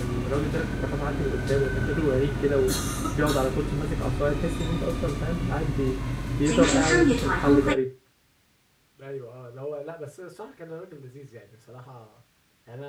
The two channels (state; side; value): identical; both; correlation 1.00